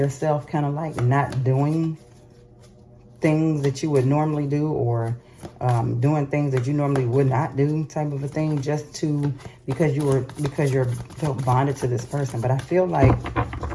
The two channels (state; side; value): identical; both; correlation 1.00